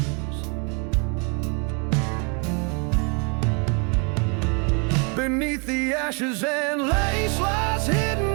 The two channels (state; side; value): quieter; left; 34.7 dB